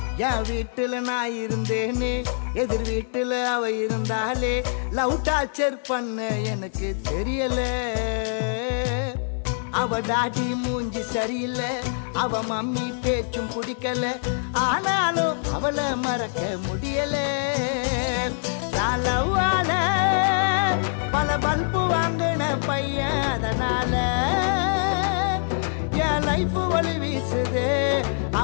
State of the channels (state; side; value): silent; right; digital silence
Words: என் வீட்டுல நான் இருந்தேனே எதிர் வீட்டுல அவ இருந்தாலே லவ் டார்ச்சர் பண்ண எனக்கு தெரியல அவ டாடி மூஞ்சி சரியில்லை அவ மம்மி பேச்சும் பிடிக்கல ஆனாலும் அவளை மறக்க முடியல லவ்வால பல பல்பு வாங்கின பையன் அதனால என் லைஃப் வழி வீசுது